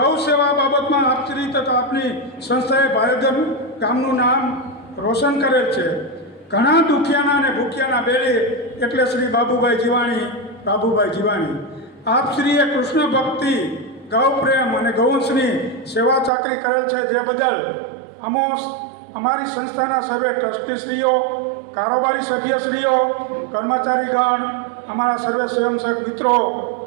સેવા બાબતમાં આપશ્રી તથા આપની સંસ્થાએ ભાયાવદર ગામનું નામ રોશન કરેલ છે. ઘણા દુખિયાના અને ભૂખ્યાના બેલી એટલે શ્રી બાબુભાઈ જીવાણી, બાબુભાઈ જીવાણી. આપશ્રીએ કૃષ્ણ ભક્તિ, ગૌ પ્રેમ અને ગૌવંશની સેવા ચાકરી કરેલ છે. જે બદલ અમારી સંસ્થાના સર્વે ટ્રસ્ટીશ્રીઓ, કારોબારી સભ્યશ્રીઓ, કર્મચારીગણ, અમારા સર્વે સ્વયંસેવક મિત્રો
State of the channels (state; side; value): drops out; left; at 16.3 s